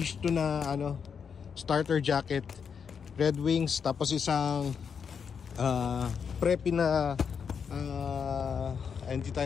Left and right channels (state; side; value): quieter; right; 6.6 dB